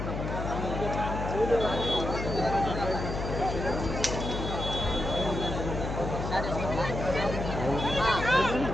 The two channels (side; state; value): left; noise; hum, 4 dB below the sound